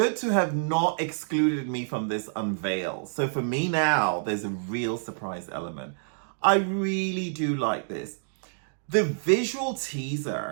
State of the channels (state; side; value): silent; left; digital silence